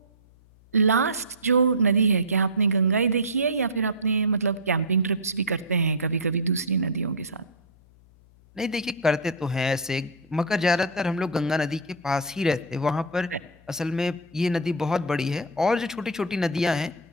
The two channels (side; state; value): left; noise; hum, 28 dB below the sound